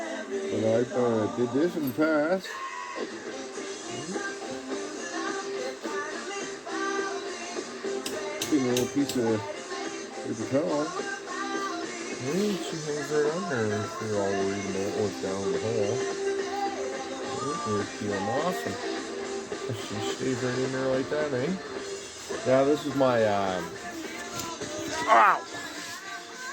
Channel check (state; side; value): identical; both; correlation 1.00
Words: but I did this in the past. A little piece of paper towel. And she hangs right on there if you're all worried about what's down the hole. Here's peeling off, and she stays right in there like that, eh? Now this is my ow!